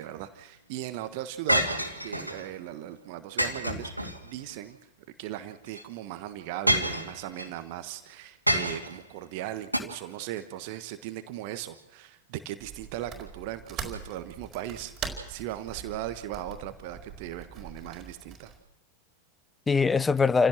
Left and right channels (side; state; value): both; normal; correlation -0.01